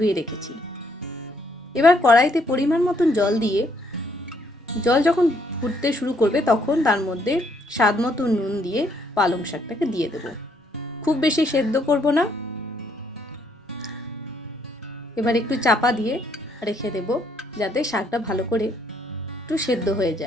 রেখেছি। এবার কড়াইতে পরিমাণ মতন জল দিয়ে, জল যখন ফুটতে শুরু করবে তখন তার মধ্যে স্বাদ মতো নুন দিয়ে পালং শাকটাকে দিয়ে দেব। খুব বেশি সেদ্ধ করব না। এবার একটু চাপা দিয়ে রেখে দেব যাতে শাকটা ভালো করে একটু সেদ্ধ হয়ে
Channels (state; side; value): normal; both; correlation 0.70